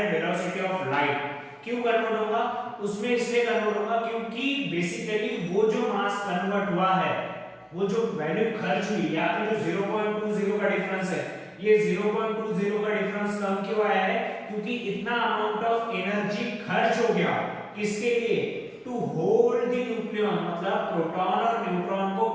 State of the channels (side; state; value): both; identical; correlation 1.00